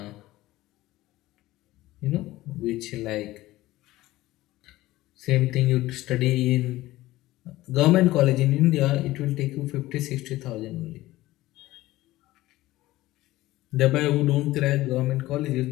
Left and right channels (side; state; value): right; quieter; 17.1 dB